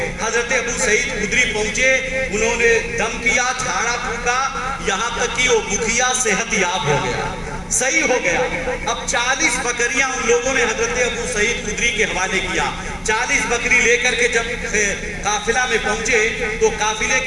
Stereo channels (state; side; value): identical; both; correlation 1.00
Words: حضرت ابو سعید خدری پہنچے, انہوں نے دم کیا, جھاڑا پھونکا, یہاں تک کہ وہ بکھیا صحت یاب ہو گیا, صحیح ہو گیا. اب 40 بکریاں ان لوگوں نے حضرت ابو سعید خدری کے حوالے کیا. 40 بکری لے کر کے جب قافلہ میں پہنچے تو قافلے